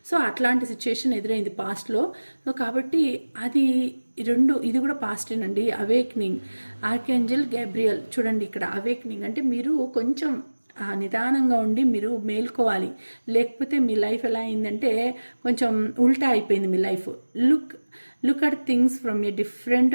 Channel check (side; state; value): both; inverted; correlation -1.00